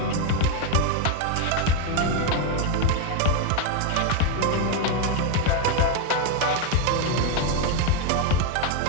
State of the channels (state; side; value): different; both; correlation 0.02